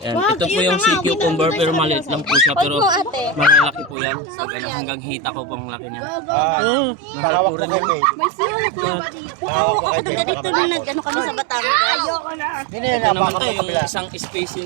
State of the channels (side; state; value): left; drops out; at 4.0 s